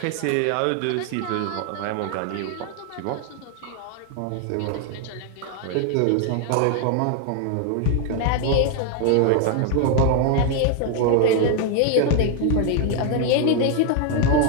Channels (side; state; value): both; different; correlation 0.00